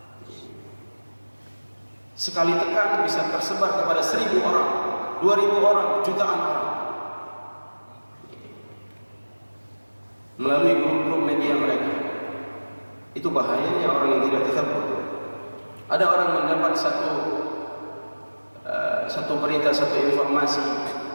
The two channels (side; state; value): both; inverted; correlation -1.00